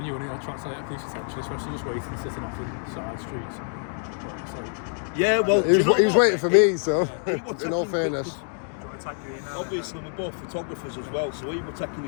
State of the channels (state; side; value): silent; right; 61 dB below the other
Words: you want to attract police attention, especially just waiting, sitting off the side streets. But it's like, Yeah, well, He was waiting for me, so was in all taking fairness. Do you want to type your email? Obviously, we're both photographers as well, so he was taking